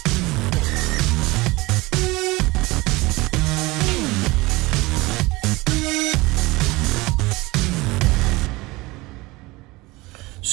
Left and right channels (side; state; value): left; quieter; 22.0 dB